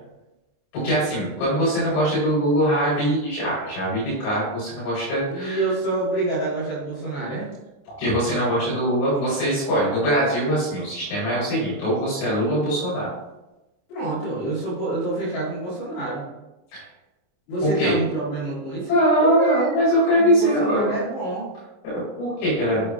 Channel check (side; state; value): right; late; 28 ms